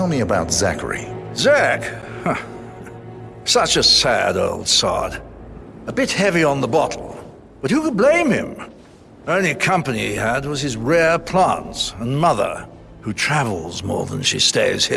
me about Zachary. Zach? Huh. Such a sad old sod. A bit heavy on the bottle, but who could blame him? Only company he had was his rare plants and mother, who travels more than she stays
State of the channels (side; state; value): both; identical; correlation 1.00